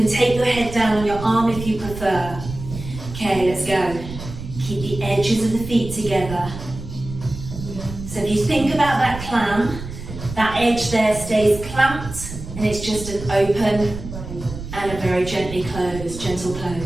take your head down on your arm if you prefer. Okay, let's go. Keep the edges of the feet together. So if you think about that clam, that edge there stays clamped and it's just an open and a very gently closed, gentle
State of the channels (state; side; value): noise; right; rumble, 11 dB below the sound